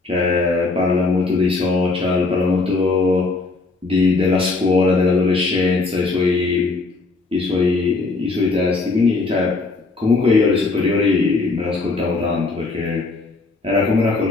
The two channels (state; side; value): quieter; right; 3.7 dB